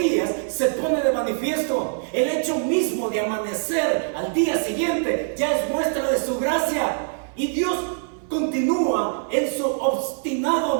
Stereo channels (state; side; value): silent; left; 55 dB below the other